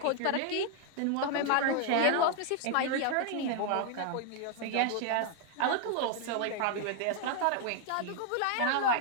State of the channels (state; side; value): different; both; correlation 0.00